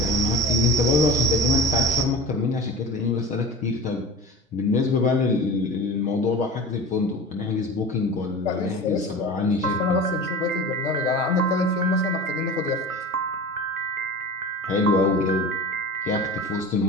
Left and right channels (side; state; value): both; normal; correlation 0.34